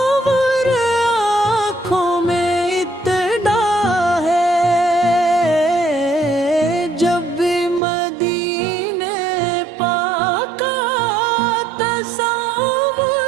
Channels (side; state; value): left; drops out; at 7.8 s